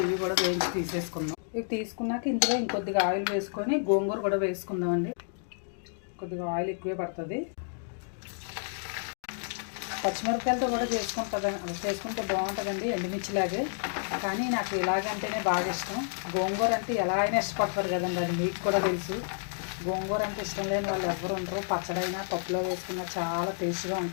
ఇవి కూడా వేయించి తీసేసుకుందాం. ఇవి తీసుకున్నాక ఇందులో ఇంకొద్దిగా ఆయిల్ వేసుకొని గోంగూర కూడా వేసుకుందామండి. కొద్దిగా ఆయిల్ ఎక్కువే పడుతుంది. పచ్చిమిరపకాయలతో కూడా చేసుకుంటే బాగుంటుందండి, ఎండుమిర్చిలాగే. కానీ నాకు ఇలాగంటేనే బాగా ఇష్టం. గోంగూర అంటే ఎలా అయినా ఇష్టపడతారు కదండి, అది మీకు కూడా తెలుసు. గోంగూర అంటే ఇష్టం లేని వాళ్ళు ఎవరు ఉండరు. పచ్చడైనా పప్పులో వేసుకున్నా చాలా టేస్ట్గా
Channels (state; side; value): silent; right; digital silence